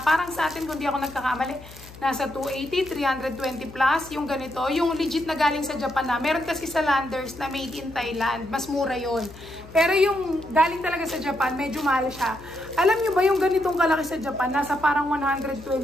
Parang sa atin, kung di ako nagkakamali, nasa 280, 320 plus. Yung ganito, yung legit na galing sa Japan na. Meron kasi sa Landers na made in Thailand. Mas mura yon. Pero yung galing talaga sa Japan, medyo mahal siya. Alam nyo ba yung ganitong kalaki sa Japan, nasa parang 120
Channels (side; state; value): left; noise; hum, 18 dB below the sound